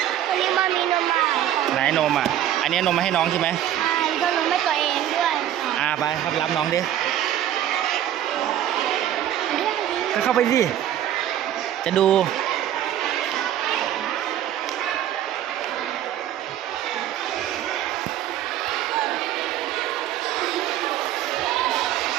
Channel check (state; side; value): quieter; left; 11.6 dB